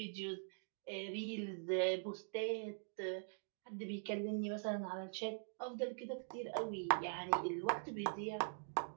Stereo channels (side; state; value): left; silent; digital silence